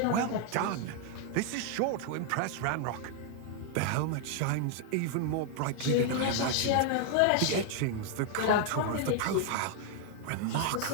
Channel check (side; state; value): both; different; correlation 0.00